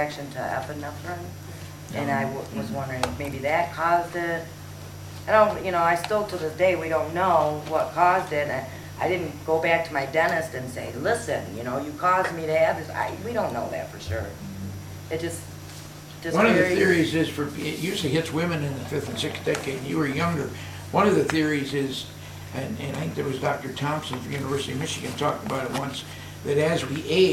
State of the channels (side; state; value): both; identical; correlation 1.00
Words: to epinephrine, and I was wondering if maybe that caused it. I don't, I still to this day, we don't know what caused it. I didn't go back to my dentist and say, listen, you caused me to have this. We don't know that for sure. It just One of the very- theories is it usually hits women in the 5th and 6th decade. You were younger. One of the theories is, and I think there was Dr. Thompson from University of Michigan talked about it once, that as we